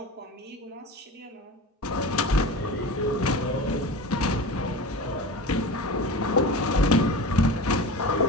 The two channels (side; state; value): both; normal; correlation 0.32